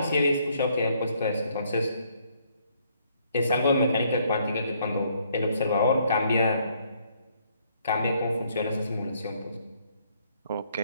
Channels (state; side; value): inverted; both; correlation -0.68